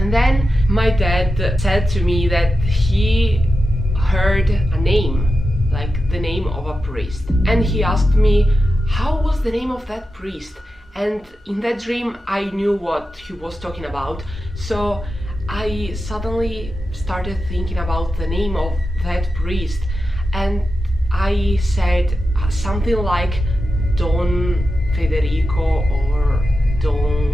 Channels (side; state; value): both; normal; correlation 0.90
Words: then my dad said to me that he heard a name, like the name of a priest. And he asked me, how was the name of that priest? And in that dream I knew what he was talking about. So I suddenly started thinking about the name of that priest, and I said something like Don Federico or